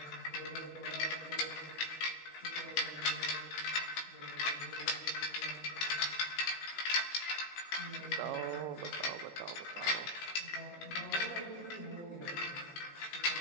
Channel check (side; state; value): right; late; 18 ms